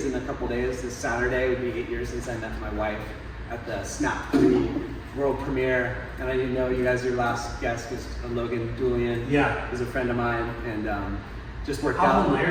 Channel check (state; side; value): identical; both; correlation 1.00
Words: in a couple days. This Saturday would be 8 years since I met my wife at the Snap 3 world premiere. And I didn't know you guys, your last guest was Logan Julian. Yeah. He's a friend of mine, and just worked How out.